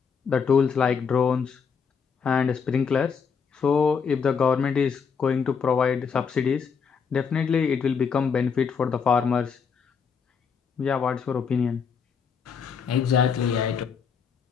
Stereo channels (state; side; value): quieter; right; 6.2 dB